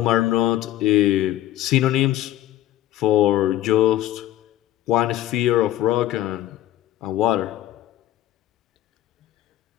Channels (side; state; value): right; quieter; 13.8 dB